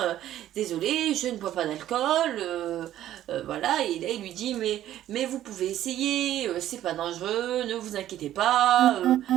désolé je ne bois pas d'alcool, voilà. Et là il lui dit mais vous pouvez essayer, c'est pas dangereux, ne vous inquiétez pas,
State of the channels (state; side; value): quieter; left; 12.6 dB